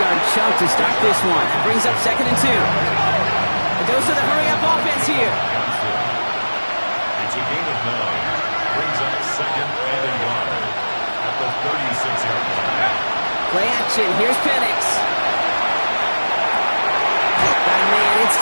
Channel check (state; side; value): inverted; both; correlation -1.00